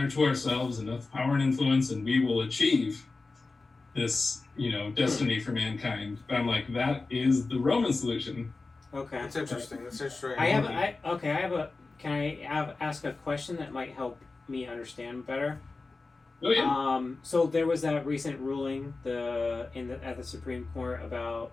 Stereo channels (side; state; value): right; quieter; 3.7 dB